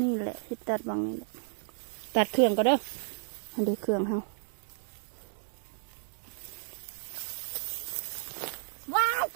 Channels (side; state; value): left; silent; 56 dB below the other